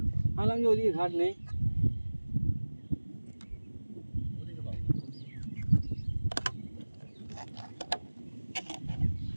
ভাবলাম যে ওইদিকে ঘাট নেই।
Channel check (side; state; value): both; inverted; correlation -1.00